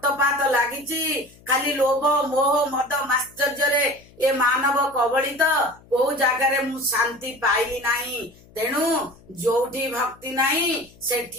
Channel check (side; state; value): left; noise; hum, 26 dB below the sound